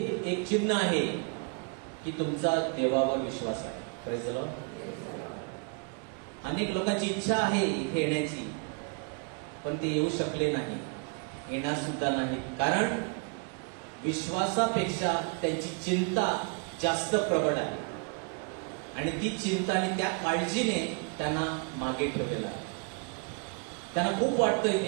एक चिन्ह आहे की तुमचा देवावर विश्वास आहे. Praise the Lord. अनेक लोकांची इच्छा आहे इथे येण्याची, पण ते येऊ शकले नाही, येणार सुद्धा नाही. कारण विश्वासापेक्षा त्यांची चिंता जास्त प्रबळ आहे आणि ती चिंता आणि त्या काळजीने त्यांना मागे ठेवलेलं आहे. त्यांना खूप वाटतं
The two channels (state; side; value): quieter; left; 35.4 dB